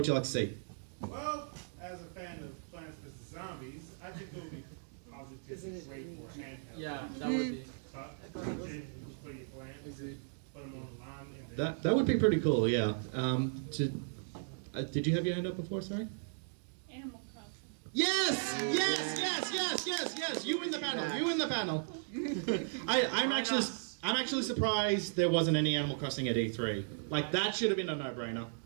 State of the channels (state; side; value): silent; left; digital silence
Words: you like to see? Well, as a fan of Plants vs. Zombies, I think it would be positively great for handheld. Yeah, that would be. For your plants. Put them online. That would be pretty cool. Yeah. Did you have your hand up before? Sorry. Animal Crossing. Yes! You win the panel. I'm actually surprised there wasn't any Animal Crossing at E3. Like that should have been a no-brainer.